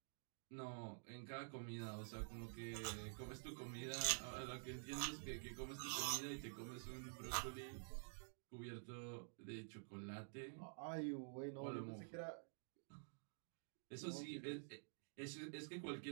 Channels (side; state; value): left; silent; digital silence